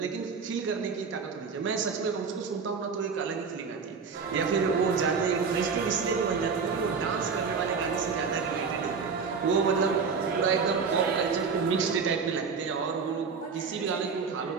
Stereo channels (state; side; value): quieter; left; 5.4 dB